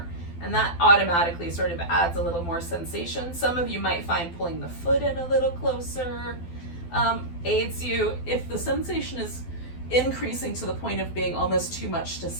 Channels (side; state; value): right; late; 12 ms